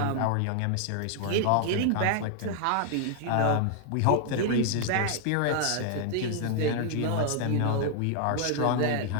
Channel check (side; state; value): both; different; correlation 0.00